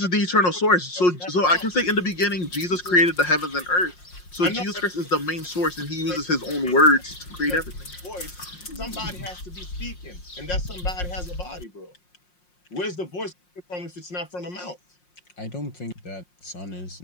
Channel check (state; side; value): late; right; 5.6 ms